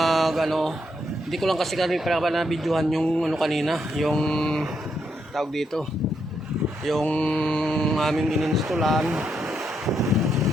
ko lang kasi kami para na videohan yung kanina, yung tawag dito, yung aming ininstallan.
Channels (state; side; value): normal; both; correlation 0.79